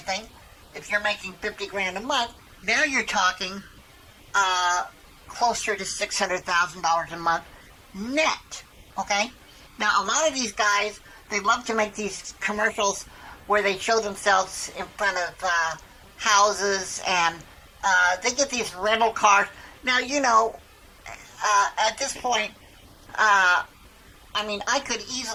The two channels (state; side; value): identical; both; correlation 1.00